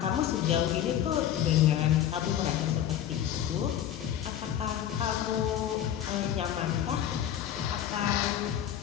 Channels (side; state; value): right; quieter; 10.7 dB